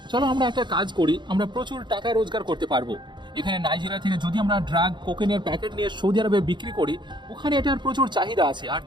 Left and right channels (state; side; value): late; left; 0.22 ms